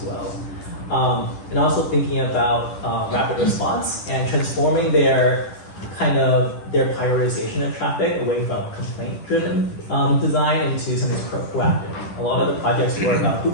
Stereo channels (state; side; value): late; right; 10 ms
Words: well. And also thinking about rapid response and transforming their prioritization of traffic away from complaint-driven design into something proactive. A lot of the projects were about who